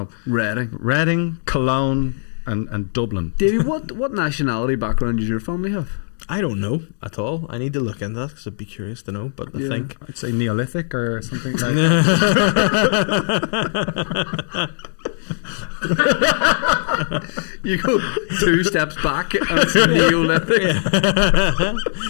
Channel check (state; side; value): silent; right; digital silence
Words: Reading, Cologne, and Dublin. Davey, what nationality background does your family have? I don't know at all. I need to look into that because I'd be curious to know. But I think I'd say Neolithic or something like You go 2 steps back and it's Neolithic.